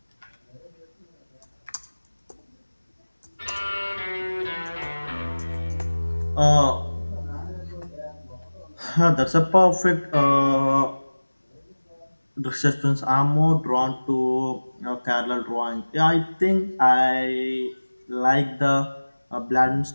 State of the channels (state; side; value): inverted; both; correlation -1.00